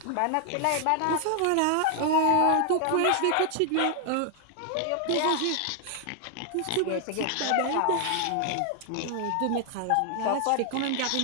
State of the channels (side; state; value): both; different; correlation 0.00